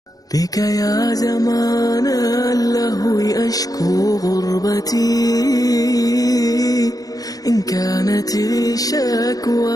بك يا زمان اللهو أشكو غربتي إن كانت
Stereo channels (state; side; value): late; right; 0.18 ms